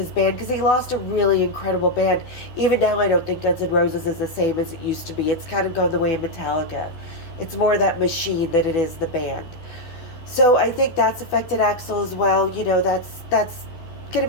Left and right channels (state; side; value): late; right; 12 ms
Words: band, because he lost a really incredible band. Even now, I don't think Guns N' Roses is the same as it used to be. It's kind of gone the way of Metallica. It's more that machine than it is the band. So I think that's affected Axl as well. That's going to